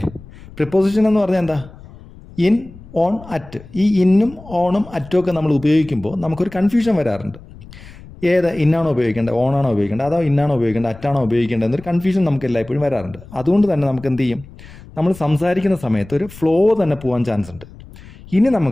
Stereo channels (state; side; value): noise; left; rumble, 19 dB below the sound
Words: പ്രിപ്പോസിഷൻ എന്ന് പറഞ്ഞാൽ എന്താ? In, on, at. ഈ ഇന്നും ഓണും അറ്റും ഒക്കെ നമ്മൾ ഉപയോഗിക്കുമ്പോൾ നമുക്കൊരു കൺഫ്യൂഷൻ വരാറുണ്ട്. ഏത് ഇന്നാണോ ഉപയോഗിക്കേണ്ടത്, ഓണാണോ ഉപയോഗിക്കേണ്ടത്, അതോ ഇന്നാണോ ഉപയോഗിക്കേണ്ടത്, അറ്റാണോ ഉപയോഗിക്കേണ്ടത് എന്നൊരു കൺഫ്യൂഷൻ നമുക്ക് എല്ലായ്പ്പോഴും വരാറുണ്ട്. അതുകൊണ്ട് തന്നെ നമുക്ക് എന്ത് ചെയ്യും, നമ്മൾ സംസാരിക്കുന്ന സമയത്ത് ഒരു ഫ്ലോ തന്നെ പോകാൻ ചാൻസ് ഉണ്ട്. ഇനി